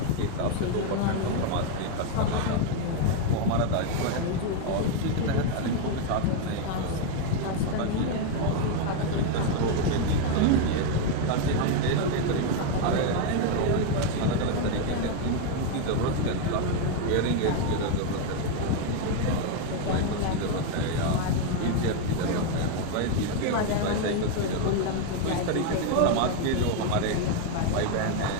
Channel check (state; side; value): different; both; correlation 0.01